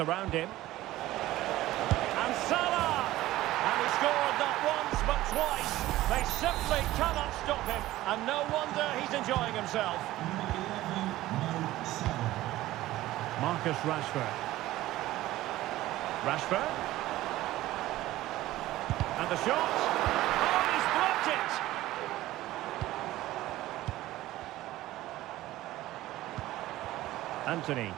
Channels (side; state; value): left; quieter; 16.1 dB